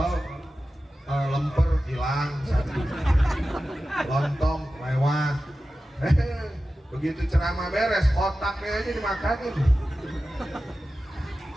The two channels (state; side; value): normal; both; correlation 0.94